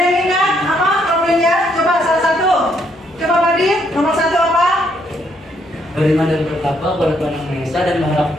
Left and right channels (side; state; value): both; normal; correlation 0.72